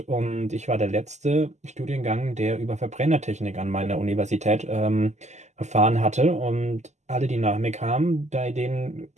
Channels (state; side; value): late; left; 0.33 ms